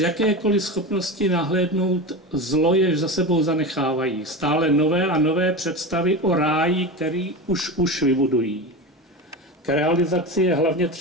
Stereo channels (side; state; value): both; normal; correlation 0.24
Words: schopnosti nahlédnout zlo, jež za sebou zanechávají. Stále nové a nové představy o ráji, který už vybudují. K realizaci je hlavně